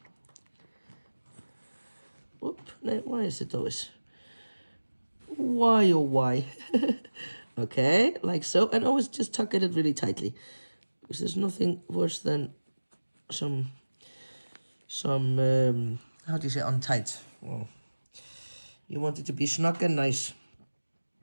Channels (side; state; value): both; inverted; correlation -1.00